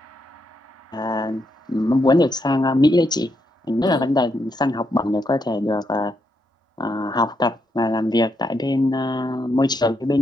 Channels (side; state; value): both; normal; correlation 0.80